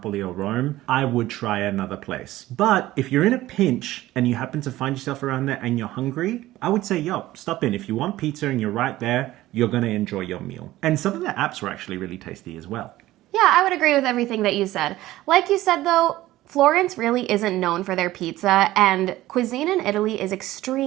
or Rome, I would try another place. But if you're in a pinch and you happen to find yourself around there and you're hungry, I would say, yo, stop in. If you want pizza and you're right there, you're going to enjoy your meal. And some of the apps were actually really tasty as well. Yeah, I would agree with everything that you said. Like you said, though, Florence really isn't known for their pizza, and cuisine in Italy is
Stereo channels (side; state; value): left; quieter; 16.1 dB